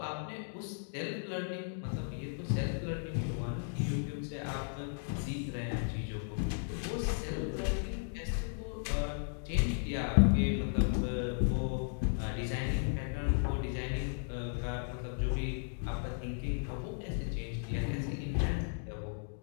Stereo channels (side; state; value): right; silent; digital silence